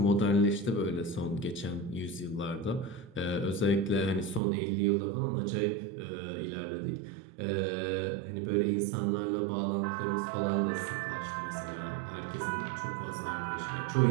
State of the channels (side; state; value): left; drops out; at 4.4 s